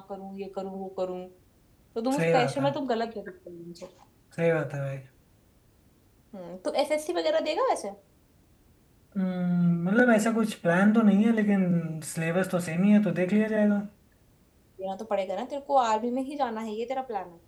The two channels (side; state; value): both; identical; correlation 1.00